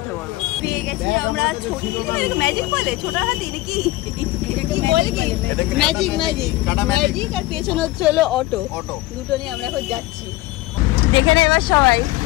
পড়বো। পেয়ে গেছি আমরা ছোটি, ম্যাজিক বলে ছোটা হাতি নাকি কি বলে, কি ম্যাজিক ম্যাজিক ম্যাজিক আর পেছনে হচ্ছে হলো অটো। দুটো নিয়ে আমরা এখন যাচ্ছি। দেখে না এবার সবাই,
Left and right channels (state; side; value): quieter; right; 18.7 dB